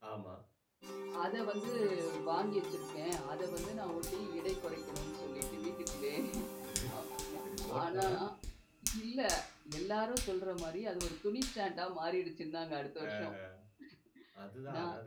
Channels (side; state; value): both; identical; correlation 1.00